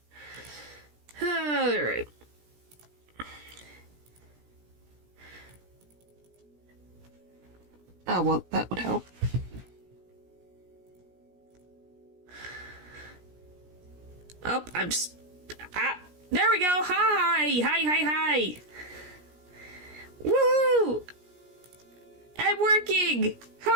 Alright. Oh, well, that would help. Oh, there we go! Hi! Hi! Woo! I'm working!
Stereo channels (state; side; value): late; left; 17 ms